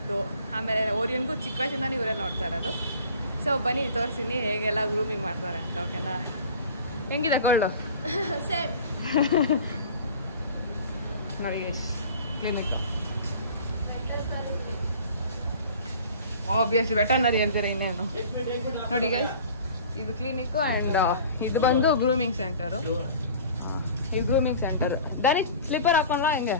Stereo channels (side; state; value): both; inverted; correlation -0.44